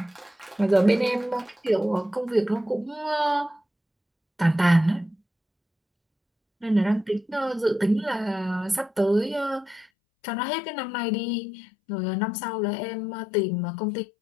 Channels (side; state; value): right; drops out; at 9.9 s